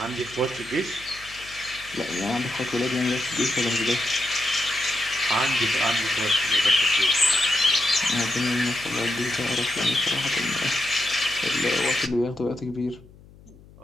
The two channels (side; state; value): left; noise; hum, 23 dB below the sound